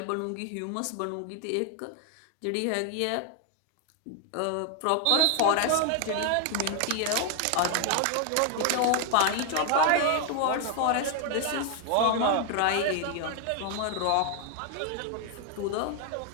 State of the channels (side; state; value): both; different; correlation 0.00